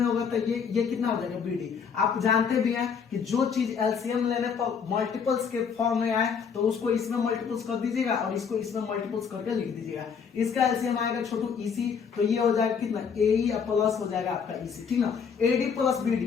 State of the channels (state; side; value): quieter; right; 6.5 dB